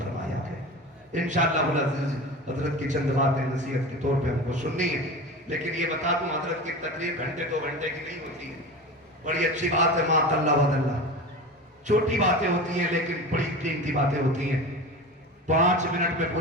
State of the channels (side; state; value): both; normal; correlation 0.30